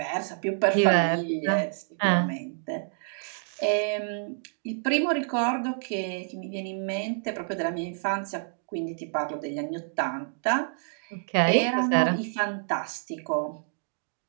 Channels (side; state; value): left; silent; digital silence